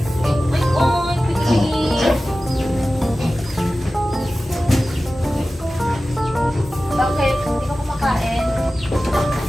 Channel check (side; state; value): both; normal; correlation 0.95